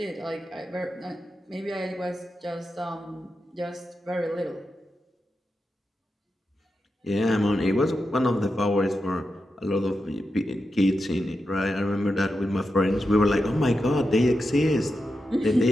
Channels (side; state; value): both; normal; correlation 0.88